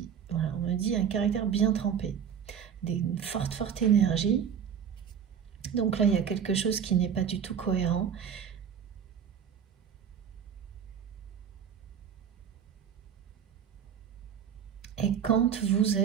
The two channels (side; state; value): left; quieter; 8.1 dB